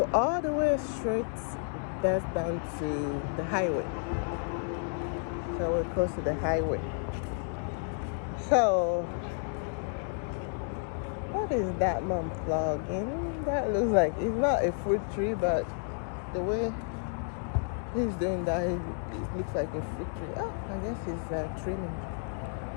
all the way straight, that's down to the highway. So we're close to the highway. So, what is that man plugging? That looks like, it's not a fruit tree, but the way he's doing that, it looks like a fruit tree. Oh, I guess he's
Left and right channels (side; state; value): right; silent; 57 dB below the other